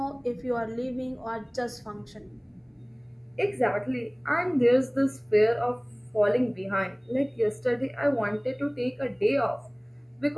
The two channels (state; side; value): identical; both; correlation 1.00